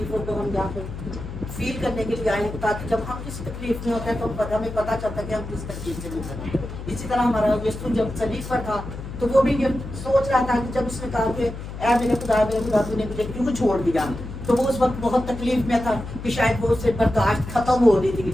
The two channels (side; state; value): left; noise; hum, 9 dB below the sound